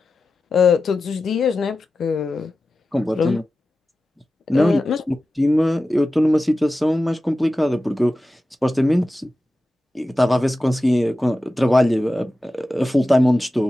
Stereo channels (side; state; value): both; normal; correlation 0.94